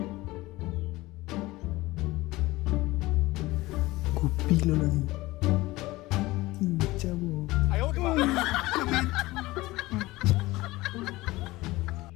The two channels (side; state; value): right; quieter; 19.4 dB